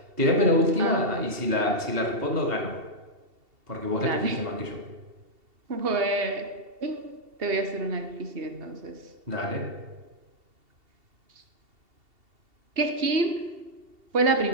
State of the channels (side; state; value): left; late; 2.7 ms